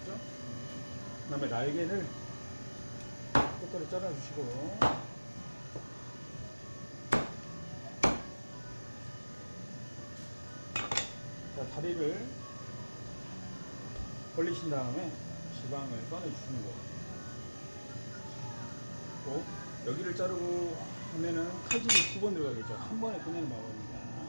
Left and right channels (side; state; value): both; inverted; correlation -1.00